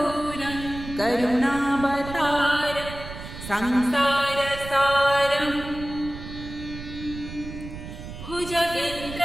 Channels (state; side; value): noise; right; rumble, 11 dB below the sound